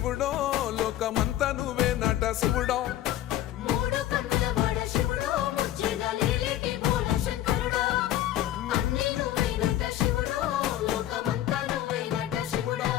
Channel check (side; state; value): right; quieter; 13.2 dB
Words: లోకమంతా నువ్వే నట శివుడో